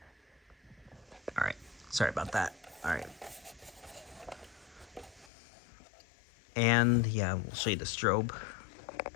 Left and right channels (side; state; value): right; drops out; at 5.3 s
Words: All right. Sorry about that. All right. And yeah, we'll show you the strobe.